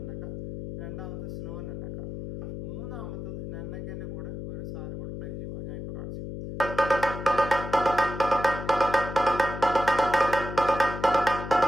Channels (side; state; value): left; noise; hum, 8 dB below the sound